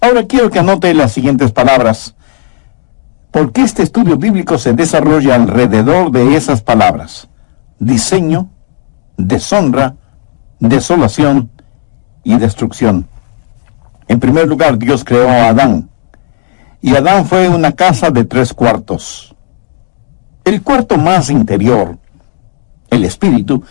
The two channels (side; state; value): right; silent; digital silence